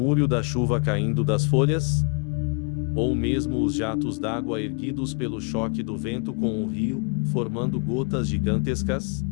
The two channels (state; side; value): quieter; right; 34.4 dB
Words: da chuva caindo das folhas? Ou mesmo os jatos d'água erguidos pelo choque do vento com o rio, formando gotas gigantescas?